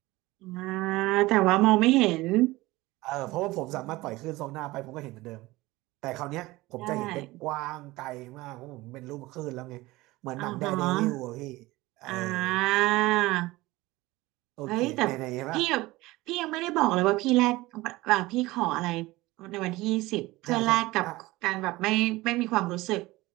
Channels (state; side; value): quieter; left; 19.7 dB